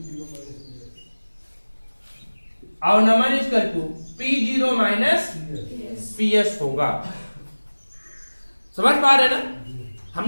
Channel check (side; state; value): both; inverted; correlation -1.00